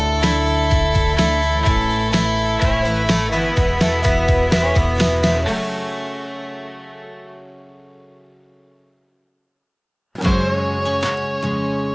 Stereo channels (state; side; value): identical; both; correlation 1.00